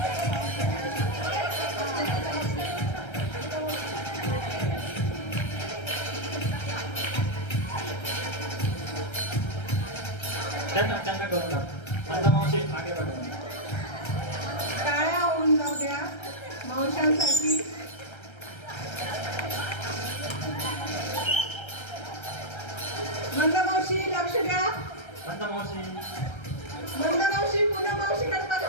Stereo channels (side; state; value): right; late; 1.3 ms